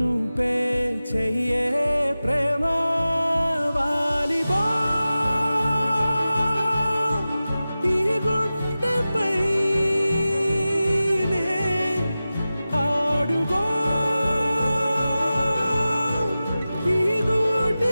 పే చెయ్యే ప్రేమ వాలిబో ఈ గుండెపై ఆడుగో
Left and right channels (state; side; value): inverted; both; correlation -0.95